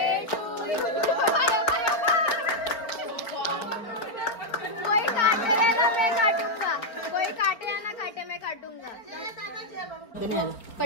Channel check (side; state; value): right; late; 4.5 ms